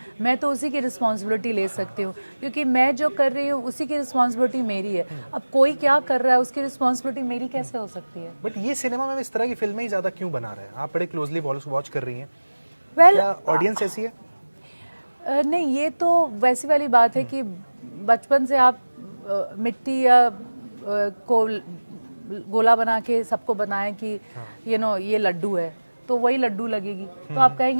मैं तो उसी की रिस्पॉन्सिबिलिटी ले सकती हूँ, क्योंकि मैं जो कर रही हूँ उसी की रिस्पॉन्सिबिलिटी मेरी है। अब कोई क्या कर रहा है उसकी रिस्पॉन्सिबिलिटी मेरी कैसे हो सकती है? बट ये सिनेमा में इस तरह की फिल्में ही ज़्यादा क्यों बना रहे हैं? आप बड़े क्लोजली वॉच कर रही हैं। वेल, ऑडियंस ऐसी है? नहीं, ये तो वैसी वाली बात है कि बचपन से आप मिट्टी या को गोला बना के सबको बनाएं कि यू नो ये लड्डू है, तो वही लड्डू लगेगी। तो आप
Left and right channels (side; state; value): both; inverted; correlation -1.00